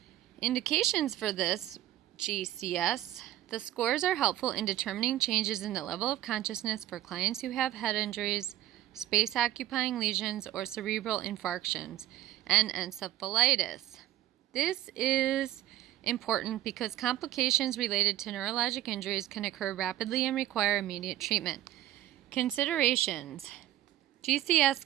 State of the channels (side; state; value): left; quieter; 14.0 dB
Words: Indications for this GCS. The scores are helpful in determining changes in the level of consciousness for clients who have head injuries, space-occupying lesions, or cerebral infarctions, and encephalitis. This is important because complications related to neurologic injuries can occur rapidly and require immediate treatment. Considerations. GCS